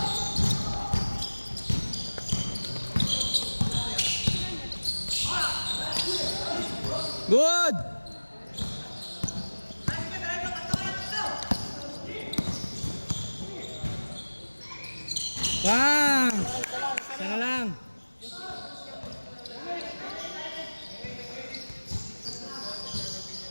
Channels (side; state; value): both; inverted; correlation -1.00